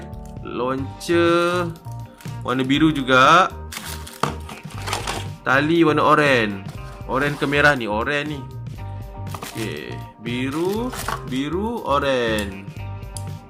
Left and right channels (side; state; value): both; identical; correlation 1.00